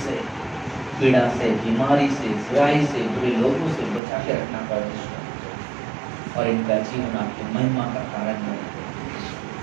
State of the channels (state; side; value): drops out; left; at 4.0 s